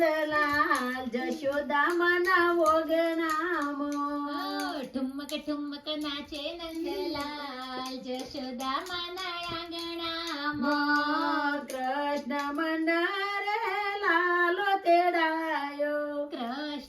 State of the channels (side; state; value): both; identical; correlation 1.00